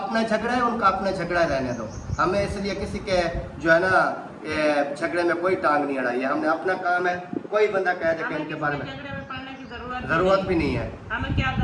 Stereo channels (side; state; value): both; identical; correlation 1.00